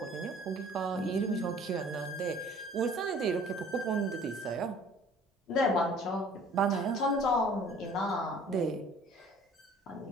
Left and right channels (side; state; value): both; normal; correlation 0.51